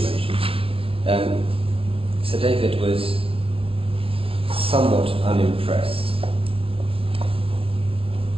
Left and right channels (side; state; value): left; late; 0.27 ms